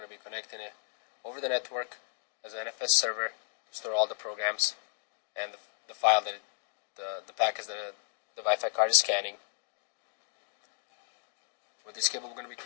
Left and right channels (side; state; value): right; silent; digital silence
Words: to be connecting it over the network as an NFS server to store all the programs and the file that the packets that the Wi-Fi card is scanning. With this cable, we're going to be